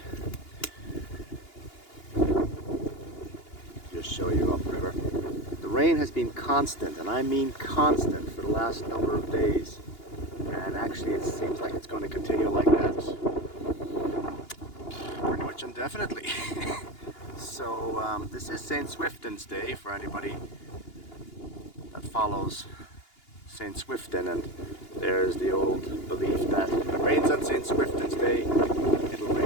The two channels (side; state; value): right; late; 2.8 ms